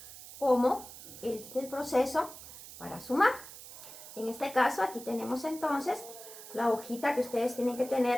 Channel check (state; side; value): noise; right; hiss, 15 dB below the sound